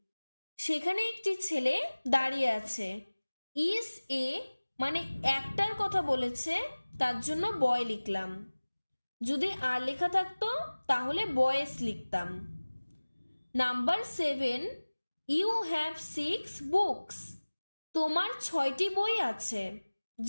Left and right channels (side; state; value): both; inverted; correlation -1.00